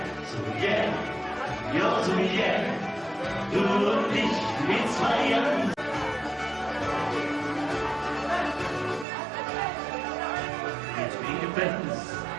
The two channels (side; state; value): left; drops out; at 9.1 s